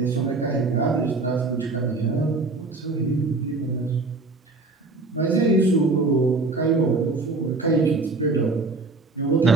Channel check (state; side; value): quieter; left; 3.6 dB